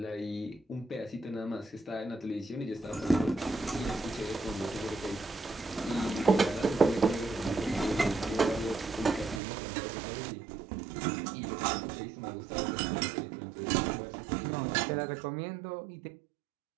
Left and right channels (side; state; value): left; drops out; at 9.4 s